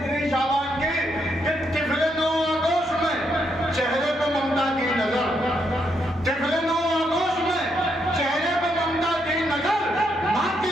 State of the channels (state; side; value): normal; both; correlation 0.77